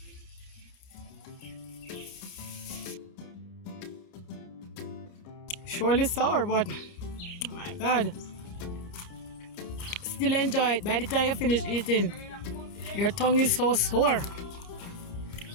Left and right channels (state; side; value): late; right; 29 ms